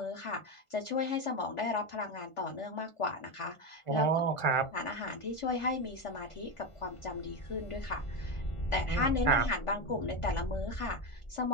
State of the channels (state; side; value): late; right; 1.4 ms